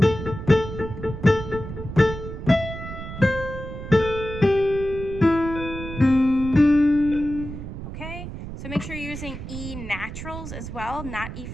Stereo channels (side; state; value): right; noise; rumble, 9 dB below the sound